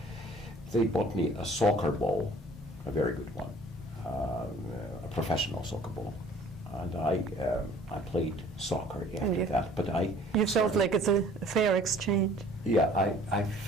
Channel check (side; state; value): both; normal; correlation 0.53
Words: bought me a soccer ball, a very good one, a professional soccer ball. and I played soccer after that. But you felt like it's a fair exchange. Yeah, I